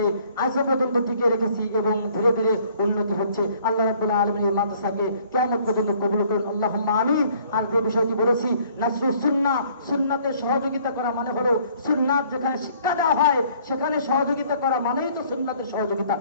আজ পর্যন্ত টিকে রেখেছি এবং ধীরে ধীরে উন্নতি হচ্ছে। আল্লাহ রাব্বুল আলামিন এই মাদ্রাসাকে কিয়ামত পর্যন্ত কবুল করুন, আল্লাহুম্মা আমিন। আর যে বিষয়টি বলেছি, নাসরুস সুন্নাহ, সুন্নাতে সহযোগিতা করা মানে হলো সুন্নাত যেখানে শিক্ষা দেওয়া হয় সেখানে সহযোগিতা করা মানেই তো সুন্নাতের সহযোগিতা,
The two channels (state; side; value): inverted; both; correlation -0.59